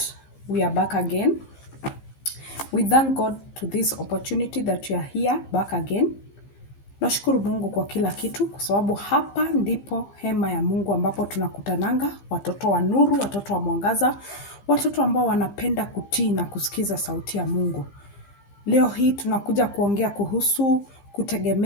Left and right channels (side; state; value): right; late; 15 ms